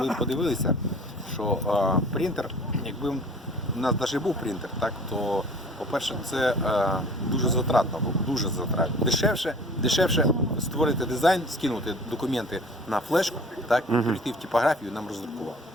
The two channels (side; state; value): both; normal; correlation 0.47